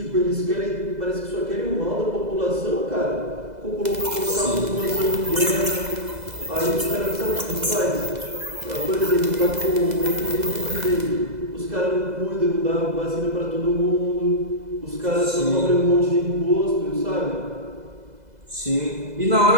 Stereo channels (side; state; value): left; late; 2.0 ms